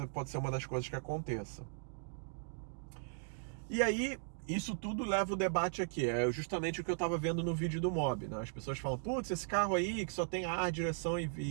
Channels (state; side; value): silent; left; digital silence